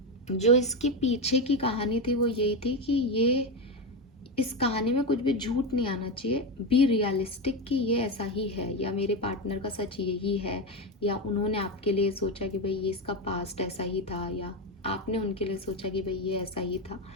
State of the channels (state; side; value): normal; both; correlation 0.13